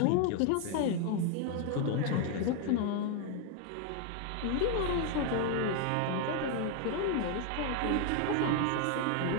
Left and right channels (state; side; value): different; both; correlation 0.00